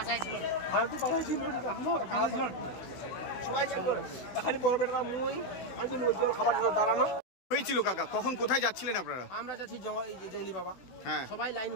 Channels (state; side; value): late; right; 16 ms